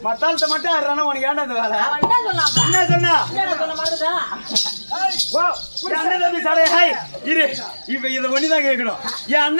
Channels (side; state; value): both; inverted; correlation -1.00